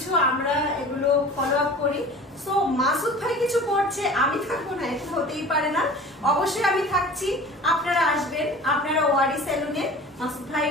আমরা এগুলো ফলো আপ করি। সো মাসুদ ভাই কিছু করছে, আমি থাকবো না, এটা হতেই পারে না। অবশ্যই আমি থাকছি, আপনারা আসবেন। আপনারা ওয়ারি সেলুনে মাসুদ ভাই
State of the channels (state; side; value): normal; both; correlation 0.40